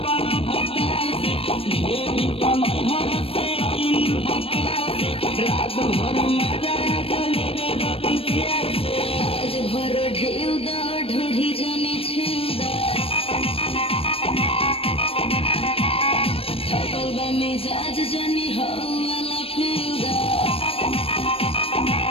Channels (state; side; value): late; right; 0.28 ms